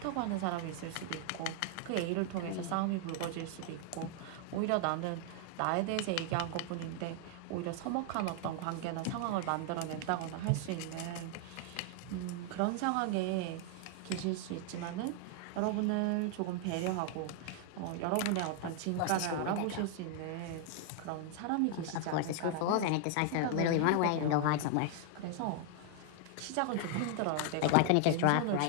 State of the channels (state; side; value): different; both; correlation 0.00